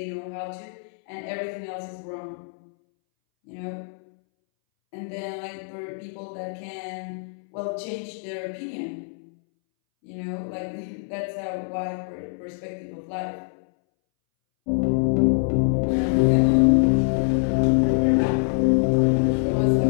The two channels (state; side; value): silent; right; 62 dB below the other